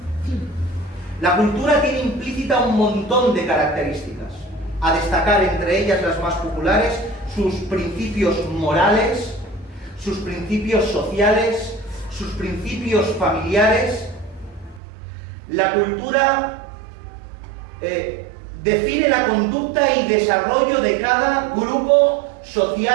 La cultura tiene implícita un montón de características, a destacar entre ellas las más populares: sus principios morales, sus principios sociales, sus principios familiares. La cultura define la conducta y desarrollo de cada grupo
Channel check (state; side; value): drops out; left; at 14.8 s